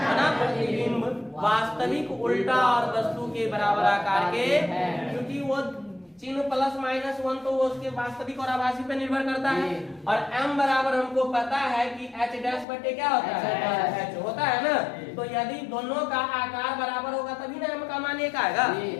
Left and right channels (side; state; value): right; drops out; at 12.7 s